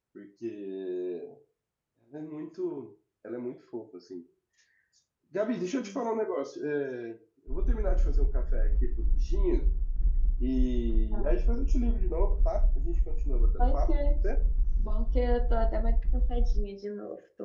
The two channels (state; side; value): identical; both; correlation 1.00